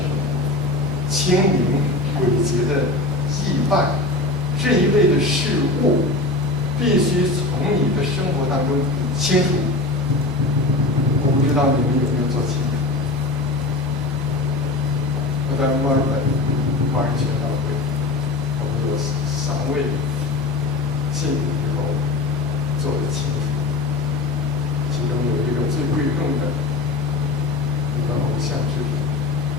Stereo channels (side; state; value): right; quieter; 3.1 dB